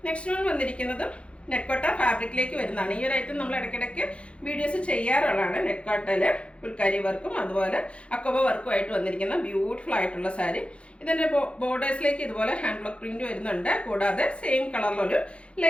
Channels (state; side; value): late; right; 0.060 ms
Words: നെക്സ്റ്റ് വൺ വന്നിരിക്കുന്നത് നെറ്റ്കോട്ട ഫാബ്രിക്കിലേക്ക് വരുന്നതാണ്. ഈ ഒരു ഐറ്റം നമ്മൾ ഇടയ്ക്കിടയ്ക്ക് വീഡിയോസ് ചെയ്യാറുള്ളതാണ്. നെറ്റ്കോട്ടയിൽ ഫുൾക്കാരി വർക്കും അതുപോലെ അക്കോബ വർക്കും ആയിട്ട് വന്നിരിക്കുന്ന ബ്യൂട്ടിഫുൾ ആയിട്ടുള്ള സാരി. ഇതിൻ്റെ ബോർഡേഴ്സിലേക്ക് ഇതുപോലെ ഹാൻഡ് ബ്ലോക്ക് പ്രിന്റ് വരുന്നുണ്ട്. കൂടാതെ സെയിം കളറിലൊരു